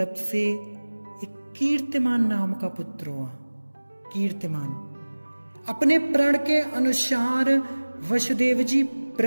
से एक कीर्तिमान नाम का पुत्र हुआ। कीर्तिमान अपने प्रण के अनुसार वसुदेव जी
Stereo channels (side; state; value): both; inverted; correlation -1.00